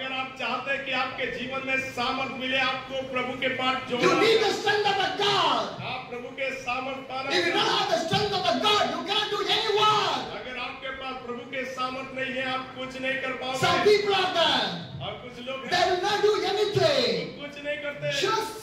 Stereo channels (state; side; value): identical; both; correlation 1.00